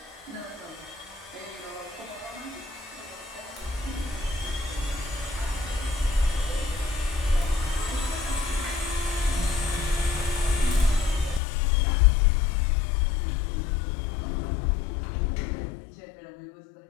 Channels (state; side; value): drops out; right; at 11.4 s